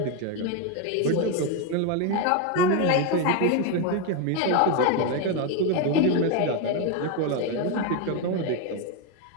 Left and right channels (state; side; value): different; both; correlation 0.02